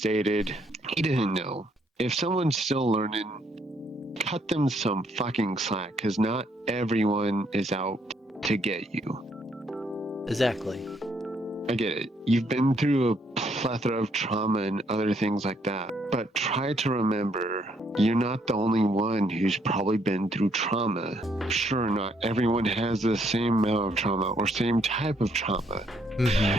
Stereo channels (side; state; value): both; normal; correlation 0.70